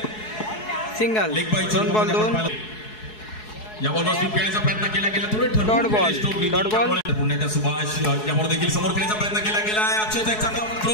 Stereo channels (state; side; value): late; right; 4.7 ms